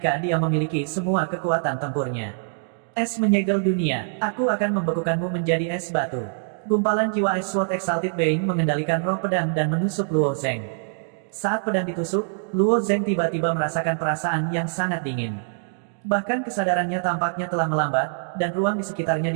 dia memiliki semua kekuatan tempurnya. Es menyegel dunia, aku akan membekukanmu menjadi es batu. Gumpalan jiwa Ice Sword Exalted Being mengendalikan roh pedang dan menusuk Luo Zeng. Saat pedang ditusuk, Luo Zeng tiba-tiba merasakan perasaan yang sangat dingin. Bahkan kesadarannya tampaknya telah melambat, dan ruang di sekitarnya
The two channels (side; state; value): left; silent; digital silence